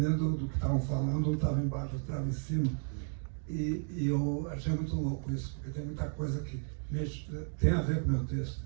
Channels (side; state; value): left; silent; 55 dB below the other